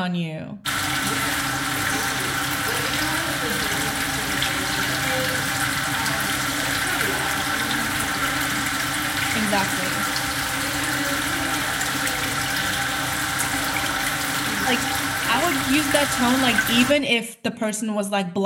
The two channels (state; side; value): identical; both; correlation 1.00